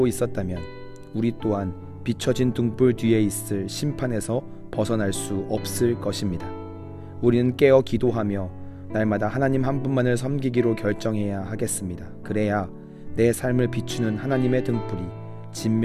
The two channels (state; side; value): identical; both; correlation 1.00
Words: 있었다면 우리 또한 비춰진 등불 뒤에 있을 심판에서 벗어날 수 없을 것입니다. 우리는 깨어 기도하며 날마다 하나님 한 분만을 섬기기로 결정해야 하겠습니다. 그래야 내 삶을 비추는 하나님의 등불이